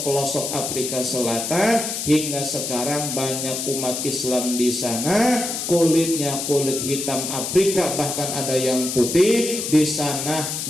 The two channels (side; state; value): left; noise; hiss, 4 dB below the sound